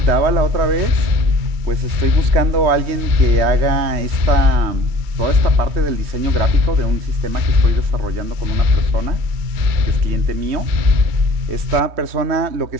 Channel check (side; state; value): left; late; 3.1 ms